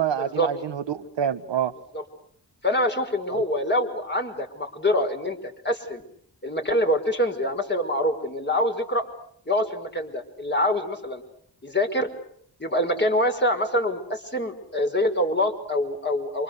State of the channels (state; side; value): normal; both; correlation 0.14